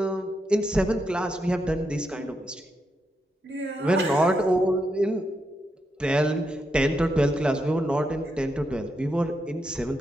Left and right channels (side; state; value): both; normal; correlation 0.83